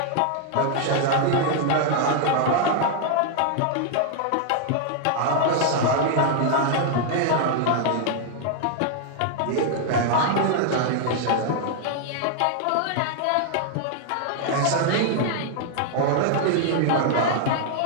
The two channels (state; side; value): different; both; correlation -0.01